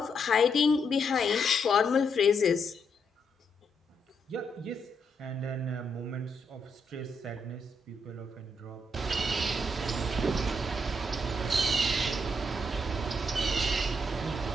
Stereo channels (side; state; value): both; normal; correlation 0.78